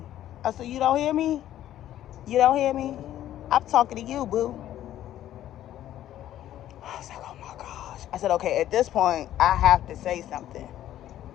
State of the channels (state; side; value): quieter; right; 12.4 dB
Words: I said, you don't hear me? You don't hear me? I'm talking to you, boo. I was like, oh my gosh. I said, okay, at this point, I have to say something.